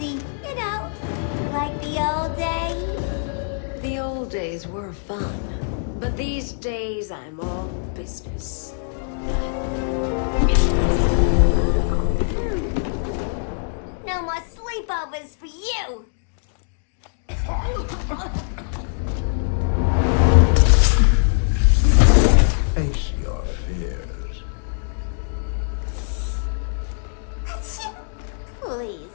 you know, like the old days. The old days were fun, but these days I'm all business. No more sleepovers for you. Face your fears. Please,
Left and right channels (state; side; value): silent; right; digital silence